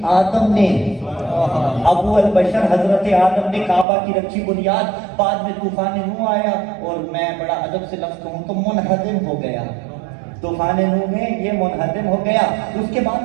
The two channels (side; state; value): left; drops out; at 3.9 s